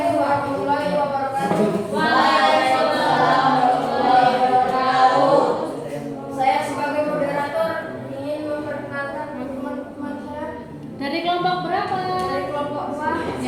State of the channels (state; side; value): identical; both; correlation 1.00